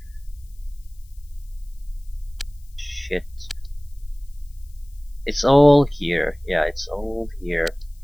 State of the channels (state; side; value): noise; left; hiss, 30 dB below the sound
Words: Shit. It's all here. Yeah, it's all here.